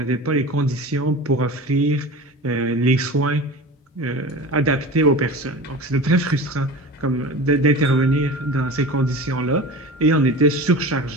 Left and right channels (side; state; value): both; normal; correlation 0.33